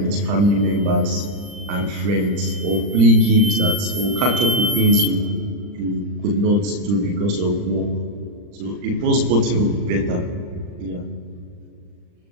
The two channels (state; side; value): late; left; 40 ms